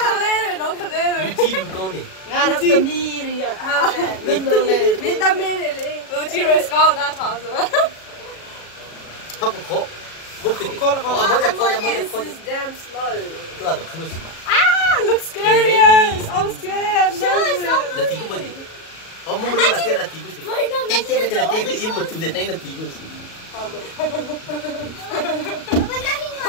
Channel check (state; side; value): late; right; 37 ms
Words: Nó thật đấy. Lưu chi con này. Nga nó tầm mi đi à? Lên lên. Mình tầm mi đi. Lưu chi rồi sao nó tháo rồi? Không có khó. Look at it. This is damn slow. Itu ada cruise. Looks scary. I'm scared. Nanti aku beri. Oh, mau beri latihan nanti aku sih. Nanti aja latihan ke ibu tu dan nanti aku sih.